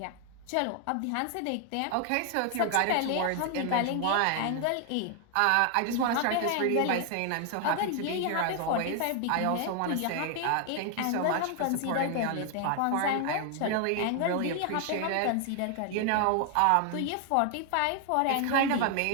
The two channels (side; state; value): both; different; correlation 0.00